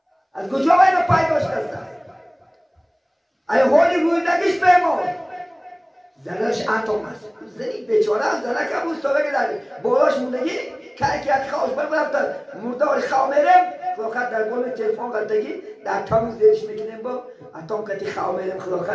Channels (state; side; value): identical; both; correlation 1.00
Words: از کجا باید پیدا شده؟ ای حالی روی دگیش بمون زنش اتم است. زنی بیچاره هم زنه که بود سابقه داری بالاش موندگی که یک خواهش برفتن مردار خواه میرم خلاقت در بال تلفن قلتگی در تامیز دیرش میکنیم با اتم کتی خواه میرم